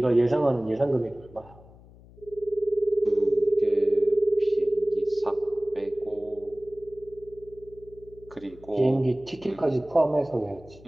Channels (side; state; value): left; noise; hum, 22 dB below the sound